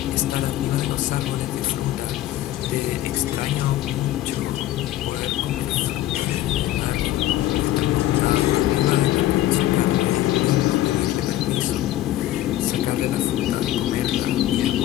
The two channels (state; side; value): quieter; right; 14.2 dB